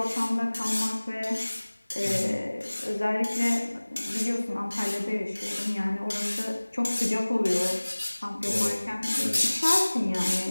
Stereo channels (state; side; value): inverted; both; correlation -1.00